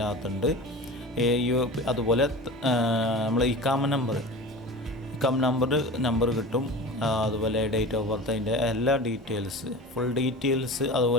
അകത്തുണ്ട്. അതുപോലെ നമ്മൾ ഇക്കാമ നമ്പർ കിട്ടും. അതുപോലെ ഡേറ്റ് ഓഫ് ബർത്ത്, അതിൻ്റെ എല്ലാ ഫുൾ ഡീറ്റെയിൽസ്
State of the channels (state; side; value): normal; both; correlation 0.34